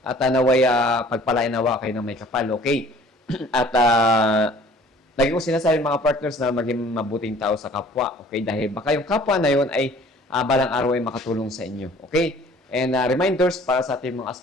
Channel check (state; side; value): normal; both; correlation 0.52